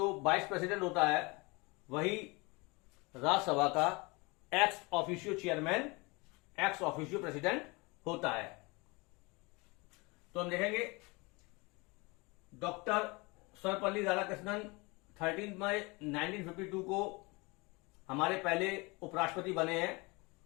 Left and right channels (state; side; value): quieter; right; 26.3 dB